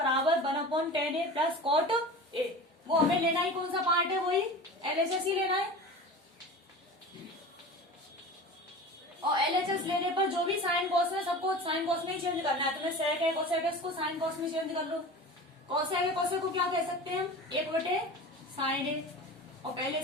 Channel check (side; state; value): both; normal; correlation 0.34